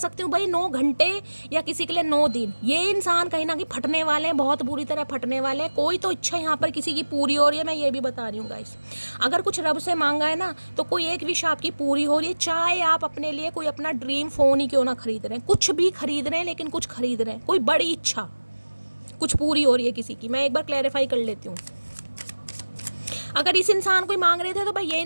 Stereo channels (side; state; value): both; inverted; correlation -1.00